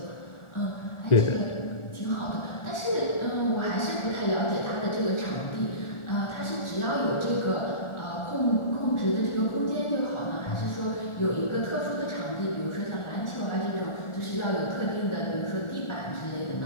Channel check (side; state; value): right; late; 1.4 ms